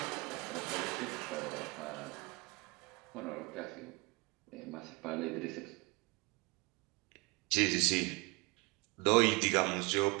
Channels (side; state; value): left; quieter; 26.7 dB